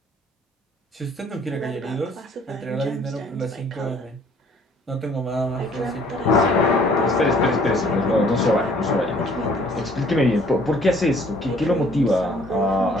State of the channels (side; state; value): both; normal; correlation 0.58